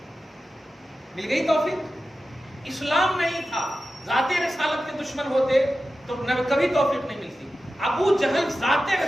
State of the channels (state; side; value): normal; both; correlation 0.93